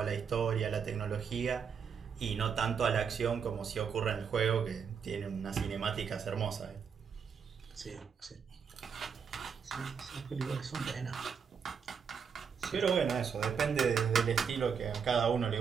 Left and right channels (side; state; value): left; quieter; 6.6 dB